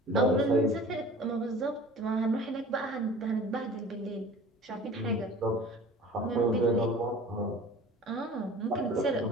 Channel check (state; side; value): normal; both; correlation 0.42